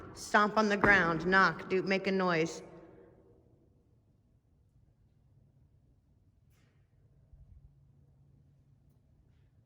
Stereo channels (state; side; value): identical; both; correlation 1.00